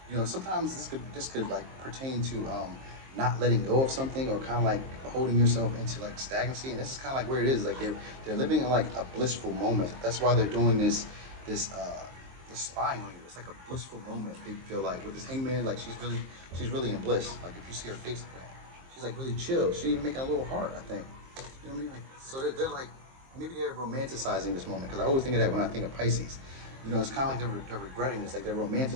Sometimes this could like pertain to not letting go of something, or kind of like holding yourself into like stagnancy. And this is kind of like where it is. Like they're living in like a blissful moment. That's why they're doing this spying on you. It's like a blissful moment. They feel like with this Hangman, like she's really in bliss. Like if you see her face, she's like really chill. She even making a little heart, I think. You know what I mean? Like so they're like. Maybe they're romanticizing this moment, because I always think of that when I think of Pisces. It's kind of like they're regretting this, like they're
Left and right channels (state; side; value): late; left; 23 ms